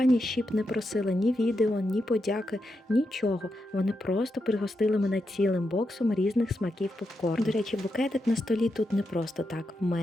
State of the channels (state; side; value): normal; both; correlation 0.86